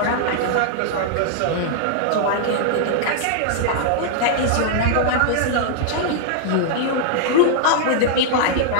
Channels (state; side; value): different; both; correlation -0.01